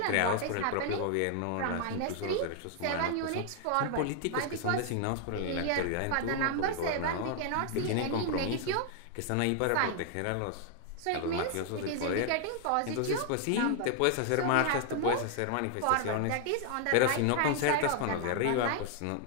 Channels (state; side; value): different; both; correlation 0.00